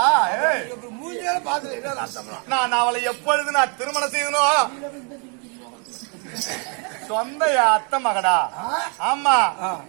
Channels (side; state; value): left; quieter; 37.4 dB